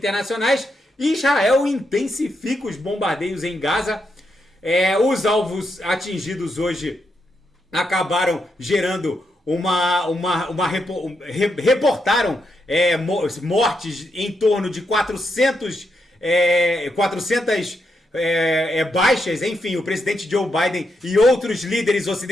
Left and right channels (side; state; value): both; normal; correlation 0.82